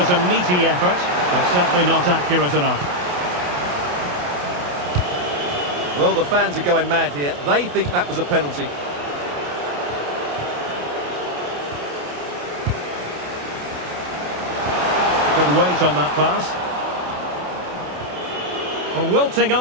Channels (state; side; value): late; left; 28 ms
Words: a meaty effort, but certainly not accurate enough. Well, the fans are going mad here. They think that was a penalty. Good weight on that pass. Well, wilting